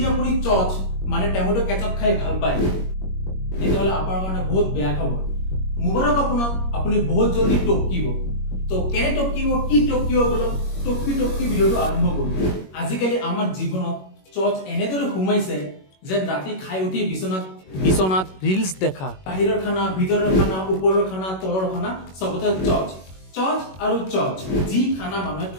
আপুনি চচ মানে টমেটো কেচাপ খাই ভাল পায় তেতিয়াহ'লে আপোনাৰ কাৰণে বহুত বেয়া খবৰ। মুবাৰক আপোনাক, আপুনি বহুত জলদি টপকিব। তো কেনে টপকিব, কি টপকিব বলক টপকি ভিডিঅ'টো আৰম্ভ কৰোঁ। আজিকালি আমাৰ জীৱনত চচ এনেদৰে সোমাইছে যে ৰাতি খাই উঠি বিচনাত ৰিলছ দেখা, বাহিৰৰ খানা, ভিতৰৰ খানা, ওপৰৰ খানা, তলৰ খানা, চবতে চচ আৰু চচ। যি খানা মানুহে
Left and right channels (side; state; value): right; late; 21 ms